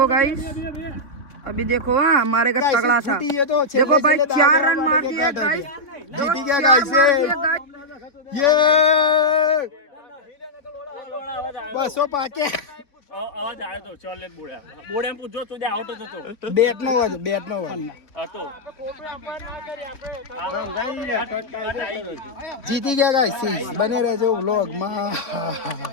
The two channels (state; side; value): late; right; 3.5 ms